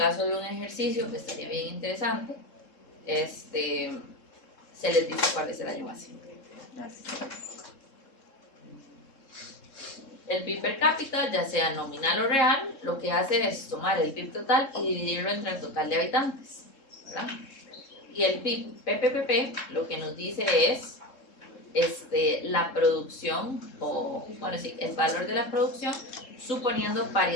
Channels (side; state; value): right; late; 3.7 ms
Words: de un ejercicio que estaría bien interesante, se les dice cuál es el año base. Gracias. El PIB per cápita, ya sea nominal o real, lo que hace es tomar el PIB total y dividirlo entre el total de habitantes, ¿verdad? Y el PIB PPPP lo que nos dice es la producción, o bueno, sí, el valor de la producción suponiendo